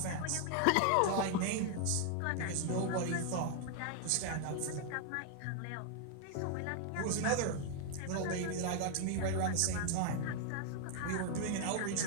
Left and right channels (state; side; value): different; both; correlation 0.00